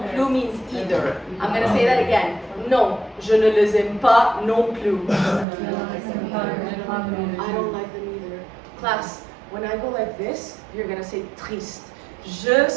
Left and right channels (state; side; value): drops out; left; at 5.5 s